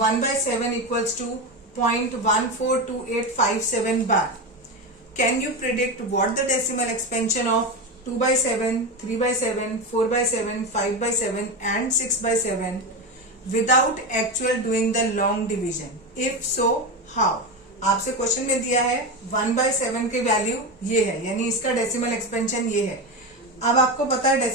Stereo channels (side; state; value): both; normal; correlation 0.18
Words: 1/7 equals to 0.142857 bar. Can you predict what the decimal expansion of 2/7, 3/7, 4/7, 5/7 and 6/7 without actual doing the long division, if so how. आपसे question में दिया है 1/7 की value ये है, यानी इसका डेसिमल एक्सपेंशन ये है। अब आपको पता है